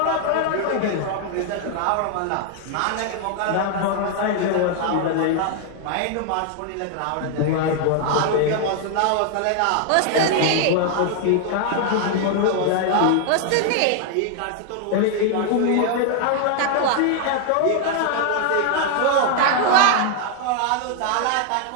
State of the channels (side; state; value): both; different; correlation 0.00